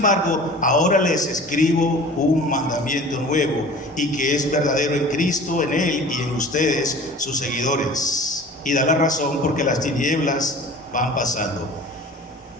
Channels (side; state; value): both; normal; correlation 0.42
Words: ahora les escribo un mandamiento nuevo y que es verdadero en Cristo, en Él y en ustedes, sus seguidores. Y da la razón porque las tinieblas van pasando.